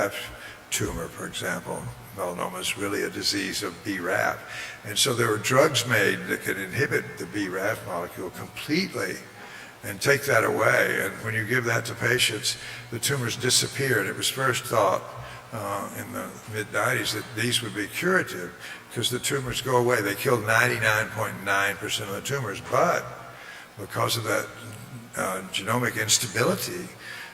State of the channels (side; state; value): both; identical; correlation 1.00